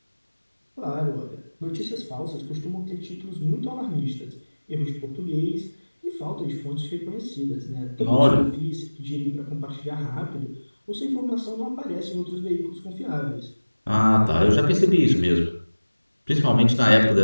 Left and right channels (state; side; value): inverted; both; correlation -1.00